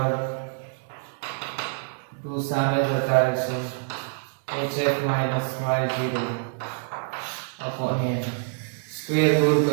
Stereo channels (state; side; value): silent; left; digital silence